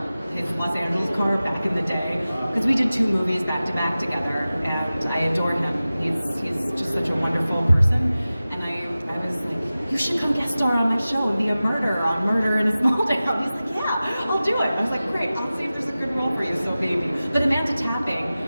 his Los Angeles car, back in the day because we did 2 movies back to back together, and I adore him. He's just such a wonderful person, and I was like, you should come guest star on my show and be a murderer on Murder in a Small Town. He's like, yeah, I'll do it. I was like, great, I'll see if there's a good role for you, so maybe. But Amanda Tapping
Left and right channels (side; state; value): both; inverted; correlation -0.96